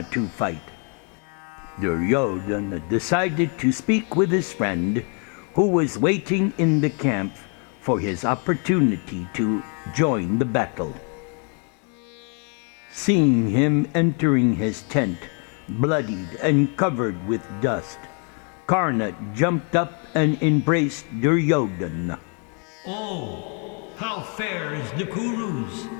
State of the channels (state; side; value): quieter; right; 38.7 dB